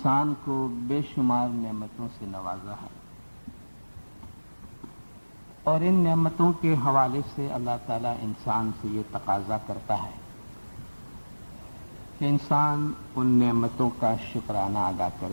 کو بے شمار نعمتوں سے نوازا ہے، اور ان نعمتوں کے حوالے سے اللہ تعالیٰ انسان سے یہ تقاضا کرتا ہے کہ انسان ان نعمتوں کا شکرانہ ادا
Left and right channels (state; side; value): inverted; both; correlation -1.00